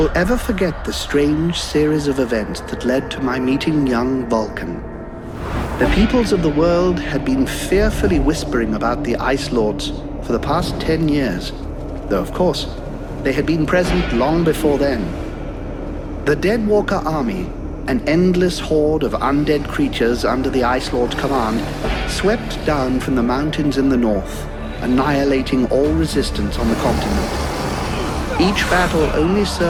ever forget the strange series of events that led to my meeting young Vulcan. The peoples of the world had been fearfully whispering about the Ice Lords for the past 10 years, though of course, they had been present long before then. The Deadwalker army, an endless horde of undead creatures under the Ice Lord's command, swept down from the mountains in the north, annihilating all resistance on the continent. Each battle only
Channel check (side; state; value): both; identical; correlation 1.00